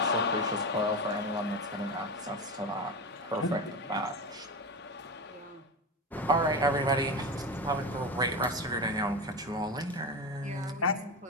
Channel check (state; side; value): normal; both; correlation 0.21